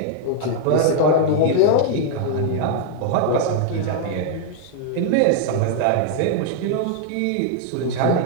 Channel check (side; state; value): both; different; correlation 0.00